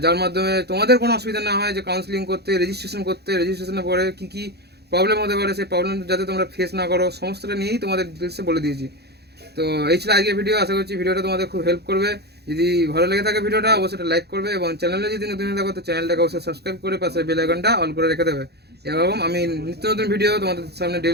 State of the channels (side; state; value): left; late; 0.48 ms